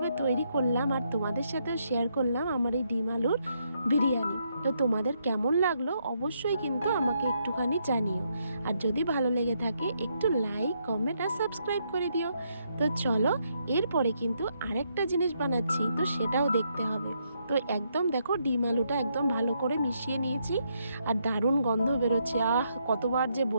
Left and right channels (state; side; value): inverted; both; correlation -0.76